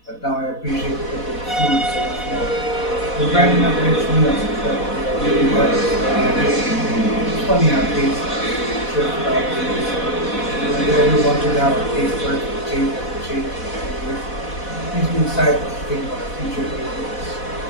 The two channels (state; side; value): late; right; 4.1 ms